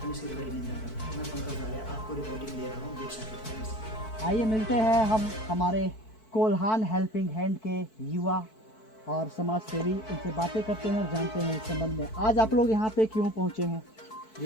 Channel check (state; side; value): late; right; 4.6 ms